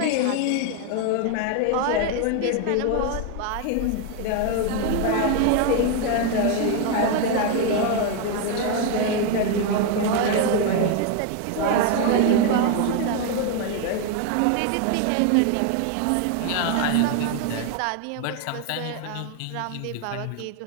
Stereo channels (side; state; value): both; different; correlation 0.01